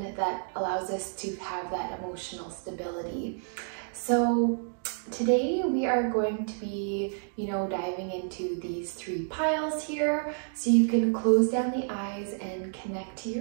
that allows us to have that emotional stability. So today we are going to be, diving into these three piles here. So you can close down the eyes and connect to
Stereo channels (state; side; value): silent; left; digital silence